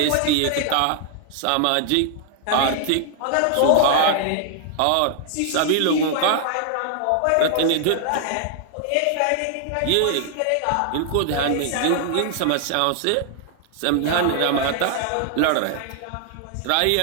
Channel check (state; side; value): different; both; correlation 0.00